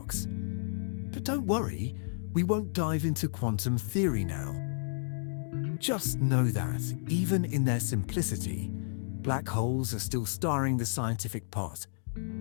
But don't worry, we won't dive into quantum theory now. Just know that, even in their simplicity, black holes are still stirring the scientific pot.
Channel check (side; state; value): right; silent; digital silence